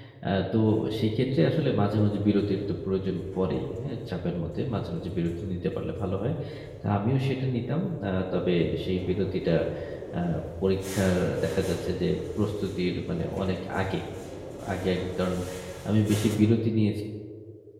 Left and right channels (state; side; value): identical; both; correlation 1.00